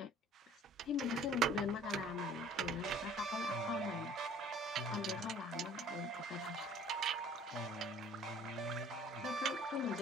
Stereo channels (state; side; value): normal; both; correlation 0.52